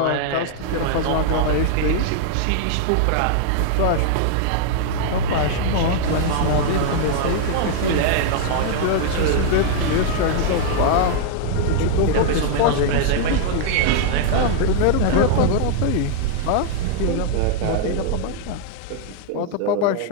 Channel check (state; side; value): different; both; correlation -0.01